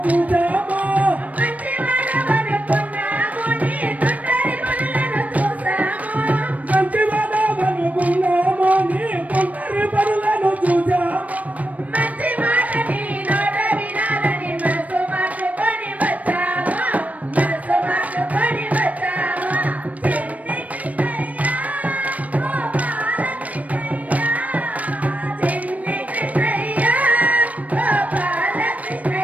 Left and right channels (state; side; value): late; left; 0.070 ms